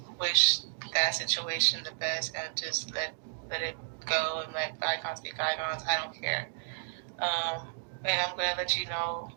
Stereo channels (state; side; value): silent; left; digital silence